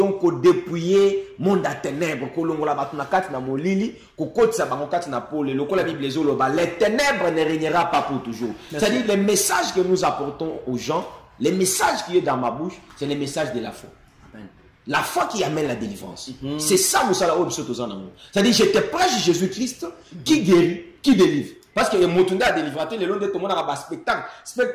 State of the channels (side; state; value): both; identical; correlation 1.00